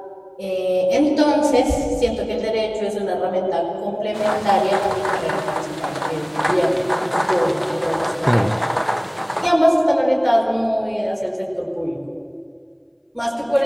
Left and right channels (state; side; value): identical; both; correlation 1.00